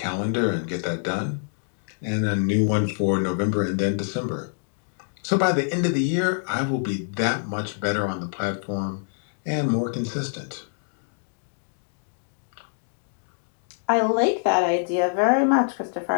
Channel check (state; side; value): silent; right; digital silence